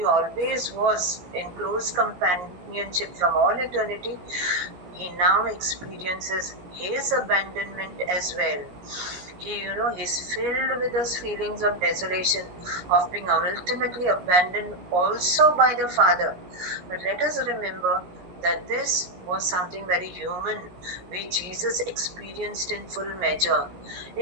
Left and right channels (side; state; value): left; late; 16 ms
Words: always was in close companionship from all eternity, he now experiences his abandonment as well. He's filled with those feelings of desolation, of being ultimately abandoned also by the Father. But let us remember that this was something very human, which Jesus experienced in full measure.